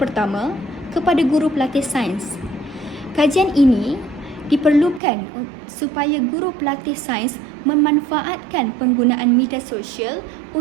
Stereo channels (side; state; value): left; drops out; at 5.0 s